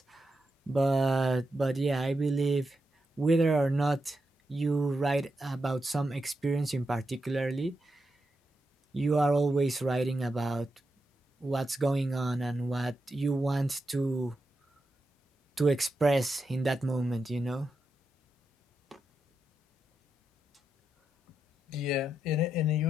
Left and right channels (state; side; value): normal; both; correlation 0.86